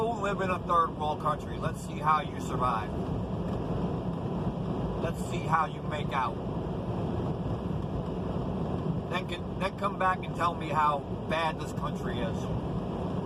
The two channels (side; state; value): both; identical; correlation 1.00